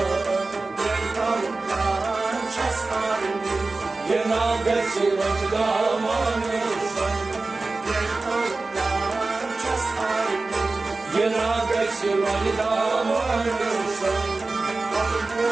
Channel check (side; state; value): left; quieter; 3.5 dB